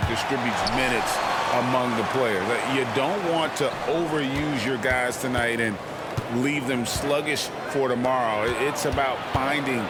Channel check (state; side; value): identical; both; correlation 1.00